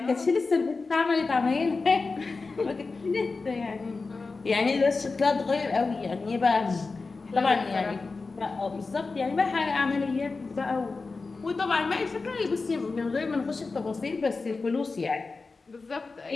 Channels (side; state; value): right; quieter; 4.0 dB